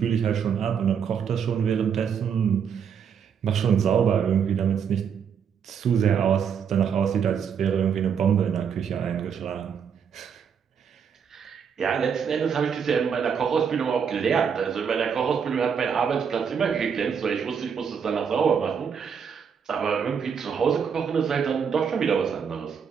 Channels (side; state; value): left; quieter; 7.1 dB